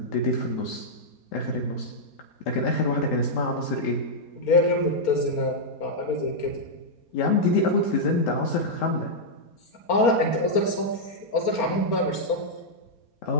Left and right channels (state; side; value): late; right; 4.3 ms